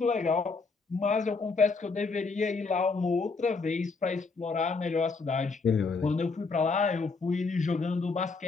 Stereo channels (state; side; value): quieter; right; 4.3 dB